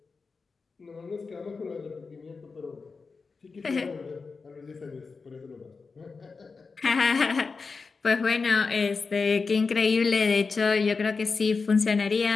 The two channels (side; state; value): right; quieter; 4.6 dB